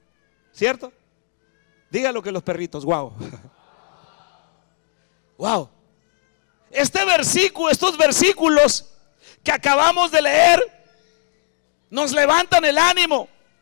¿cierto? Diga lo que los perritos, wow. Wow. Estos versículos que acabamos de leer nos levantan el ánimo.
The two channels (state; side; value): silent; right; 64 dB below the other